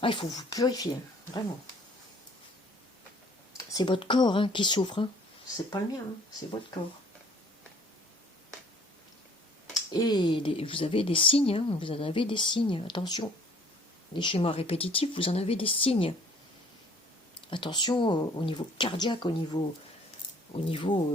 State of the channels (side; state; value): both; normal; correlation 0.56